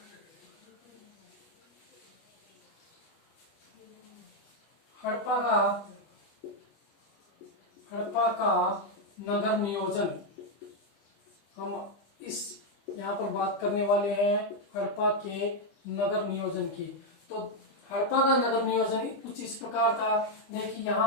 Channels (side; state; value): right; late; 25 ms